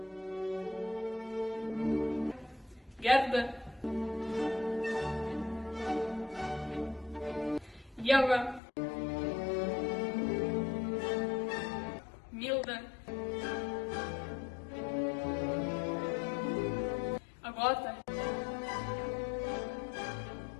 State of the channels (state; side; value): drops out; right; at 8.6 s